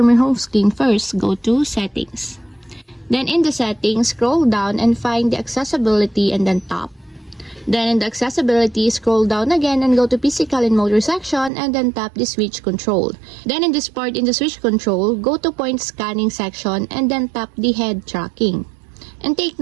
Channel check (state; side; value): drops out; left; at 11.5 s